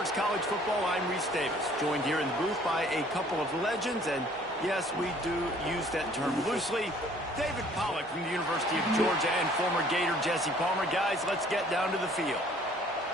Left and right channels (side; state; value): both; normal; correlation 0.57